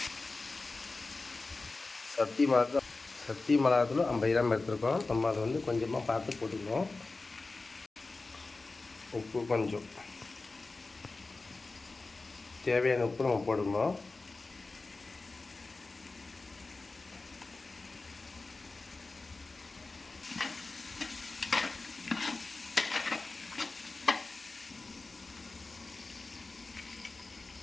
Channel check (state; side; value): quieter; right; 3.6 dB